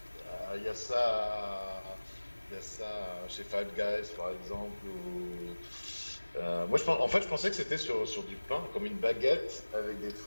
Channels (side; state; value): both; inverted; correlation -1.00